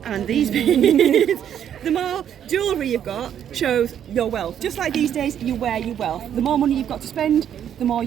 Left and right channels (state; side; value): quieter; left; 9.6 dB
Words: and these beads. The more jewellery you've got shows your wealth. Just like these days, you wear your wealth. The more money you've got to spend, the more